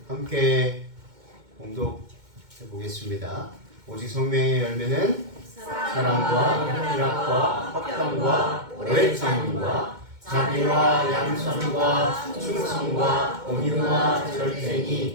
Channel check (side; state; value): left; late; 2.2 ms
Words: 함께 공독해 보겠습니다. 오직 성령의 열매는 사랑과 희락과 화평과 오래 참음과 자비와 양선과 충성과 온유와